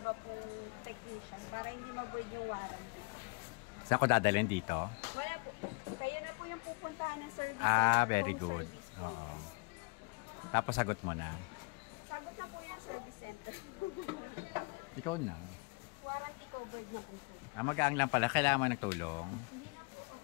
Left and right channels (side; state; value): right; quieter; 30.7 dB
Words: po technician para hindi mag-void yung warranty. Saan ko dadalhin dito? Wala po. Kayo na po yung pupuntahan ng service. Ah, very good. Oo. Tapos sagot mo na. Sagot na po yung service center. Ikaw na. Warranty covered na po. Magaang lang pala. Kailangan mo ng tulong? Hindi na